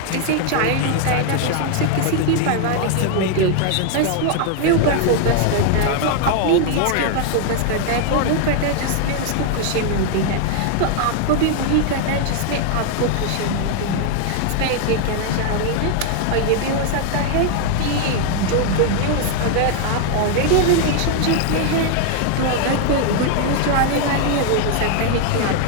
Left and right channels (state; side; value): different; both; correlation 0.00